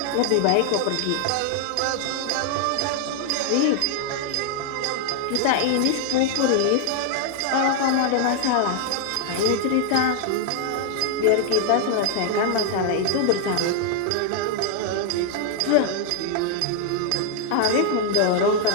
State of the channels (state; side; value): different; both; correlation 0.00